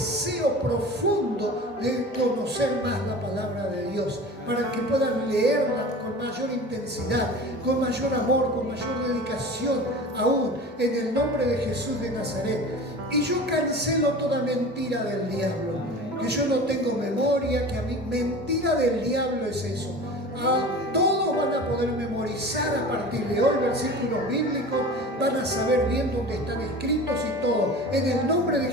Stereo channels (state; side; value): normal; both; correlation 0.36